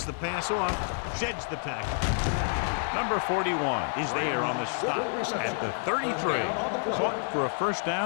the pass off, sheds the tackle. Number 41 is there on the stop at the 33. Caught for a first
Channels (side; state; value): right; silent; 59 dB below the other